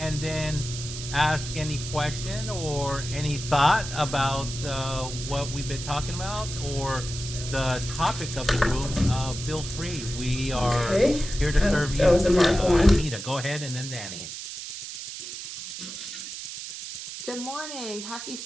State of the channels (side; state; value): right; noise; hiss, 8 dB below the sound